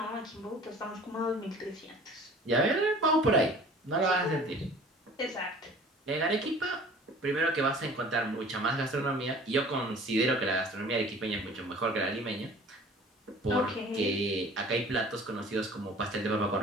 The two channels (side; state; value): both; normal; correlation 0.47